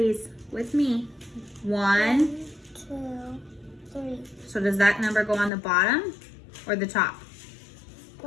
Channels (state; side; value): drops out; right; at 5.5 s